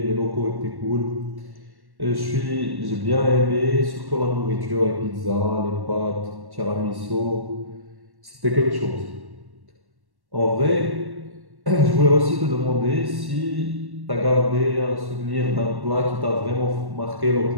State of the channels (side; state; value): left; late; 1.1 ms